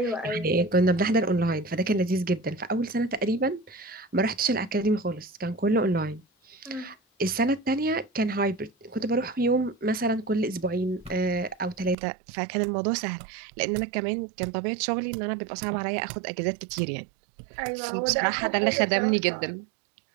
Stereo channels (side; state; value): left; drops out; at 12.0 s